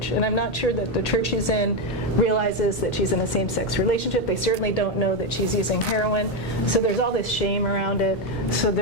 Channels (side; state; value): both; normal; correlation 0.07